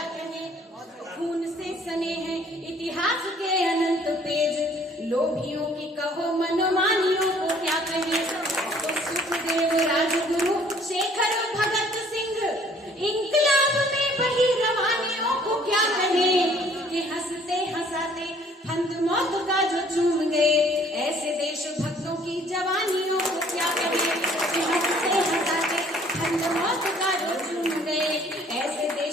कहें। खून से सने हैं इतिहास के अनंत पेज, लोभियों की कहो मनमानियों को क्या कहें। तो सुखदेव राजगुरु शेखर भगत सिंह इंकलाब में बही रवानियों को क्या कहें। कि हंसते हंसाते फंद मौत का जो चूम गए, ऐसे देशभक्तों की जवानियों को क्या कहें। कि हंसते हंसाते फंद मौत का जो चूम गए, ऐसे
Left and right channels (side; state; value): both; normal; correlation 0.58